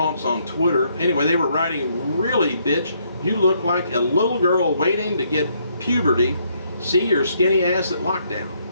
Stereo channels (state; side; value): inverted; both; correlation -0.72